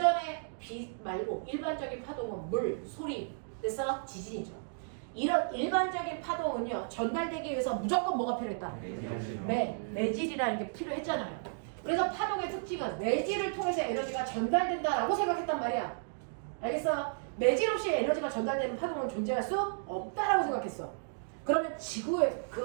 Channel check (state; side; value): silent; left; digital silence